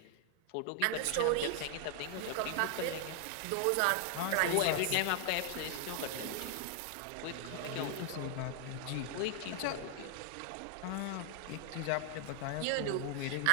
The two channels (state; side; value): different; both; correlation 0.00